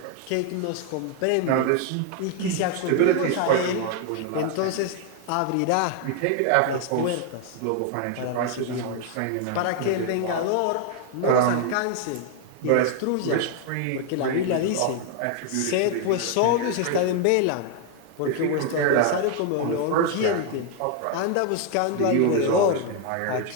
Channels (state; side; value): different; both; correlation 0.00